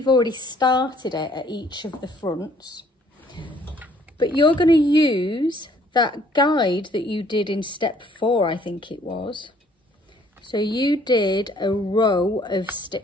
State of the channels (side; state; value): both; normal; correlation 0.61